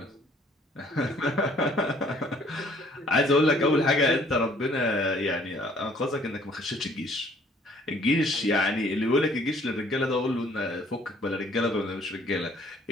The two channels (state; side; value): normal; both; correlation 0.59